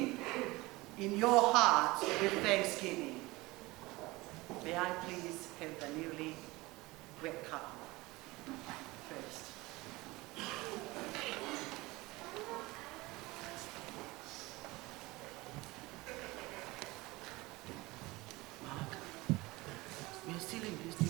in your hearts with thanksgiving. May I please have the newly wet cup first. Mark, we are still in this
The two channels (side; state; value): left; quieter; 21.6 dB